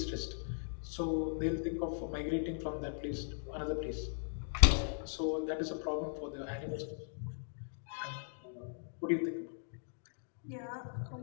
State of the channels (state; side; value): silent; right; digital silence